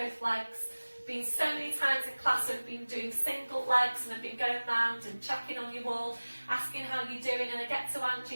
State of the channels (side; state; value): both; inverted; correlation -1.00